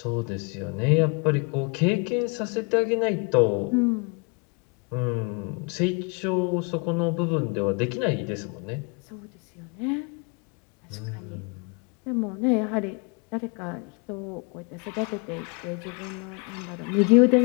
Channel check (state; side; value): quieter; right; 32.8 dB